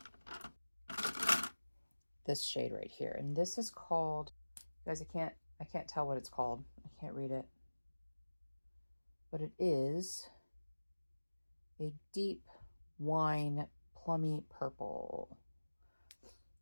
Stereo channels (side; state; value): both; inverted; correlation -1.00